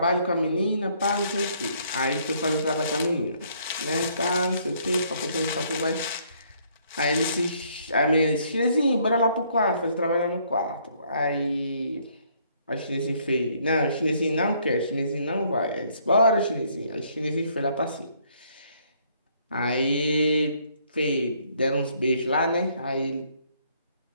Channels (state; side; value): inverted; both; correlation -0.66